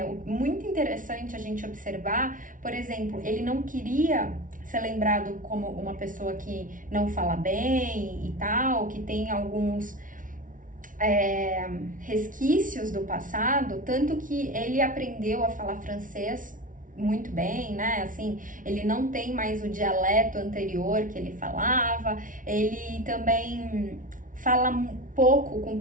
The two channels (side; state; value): left; late; 0.38 ms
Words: muito interessante a gente observar, por exemplo, ele não queria ser lembrado como uma pessoa que não fala bem e tal, que tem alguns resquícios do passado, tanto que ele aprendeu a falar francês muito bem, né? Assim, ele não tem mais o dialeto anterior que ele falava, ele também fala pouco com